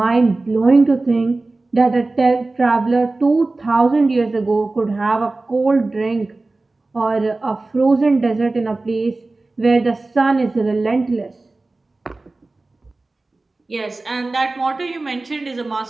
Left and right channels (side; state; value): left; quieter; 3.3 dB